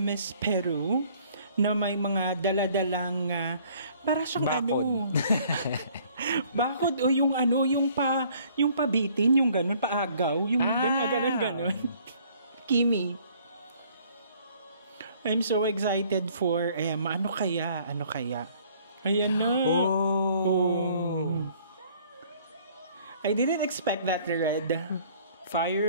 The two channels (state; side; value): inverted; both; correlation -0.58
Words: Peru na may mga daladalang para siyang bakod. Bakod o yung pabitin, yung ganun, paagaw, yung ganun. Kimi. I'm so excited for Emma. Ano kaya? Ayan na. Oh. I didn't expect that red.